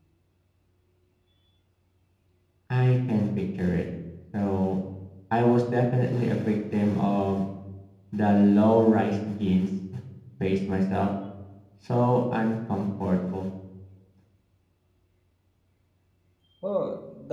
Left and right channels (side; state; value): both; identical; correlation 1.00